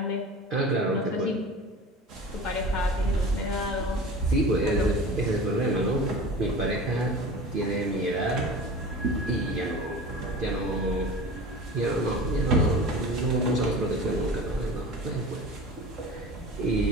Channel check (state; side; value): normal; both; correlation 0.36